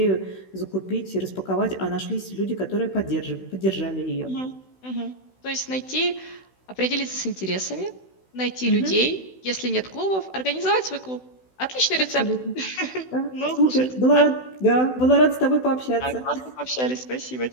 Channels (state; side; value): late; right; 16 ms